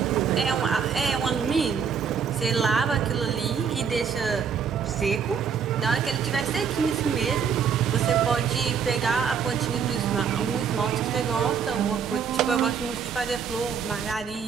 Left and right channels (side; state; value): left; quieter; 6.8 dB